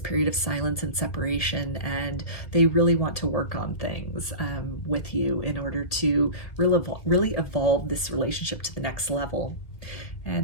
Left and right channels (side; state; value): right; late; 1.8 ms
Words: of silence and separation, and they really want to work on things with you in order to really evolve this relationship to the next level.